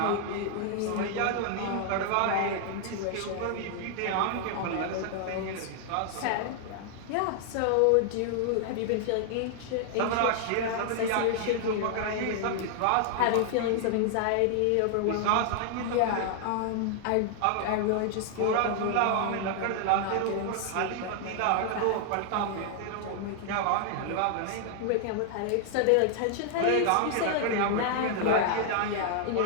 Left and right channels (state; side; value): different; both; correlation 0.00